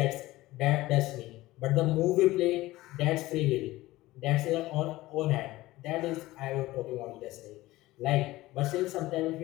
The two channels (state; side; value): quieter; right; 17.9 dB